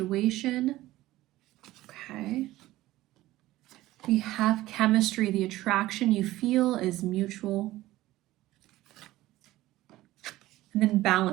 Okay. We have chemistry. The attraction you feel is mutual. And then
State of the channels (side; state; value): left; quieter; 16.5 dB